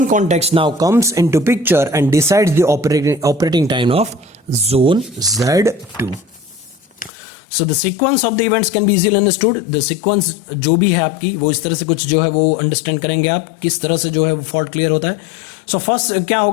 context now comes into picture and decides the operating time of zone Z2. So the sequence of the events can be easily understood. The sequence जो भी है आपकी, वो इस तरह से कुछ जो है वो अंडरस्टैंड करेंगे आप, किस तरह से जो है वो फॉल्ट क्लियर होता है. सो फर्स्ट क्या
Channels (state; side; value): drops out; right; at 7.1 s